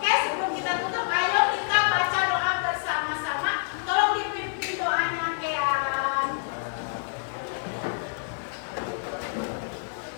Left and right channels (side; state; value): right; silent; digital silence